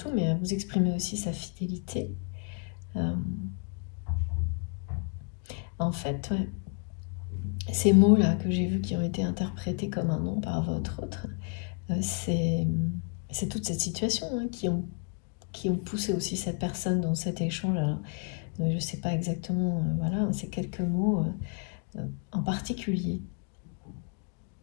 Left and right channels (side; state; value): right; quieter; 36.8 dB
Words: mais à vous exprimer aussi sa fidélité. En fait, ouais, ces mots-là que j'ai vus qui ont été interprétés comme un nom par votre autre, c'est toute cette situation, hein, qui ont poussé aussi cette personne dans cet échange. Alors, je ne sais pas exactement, voilà, c'est quelques mots en particulier.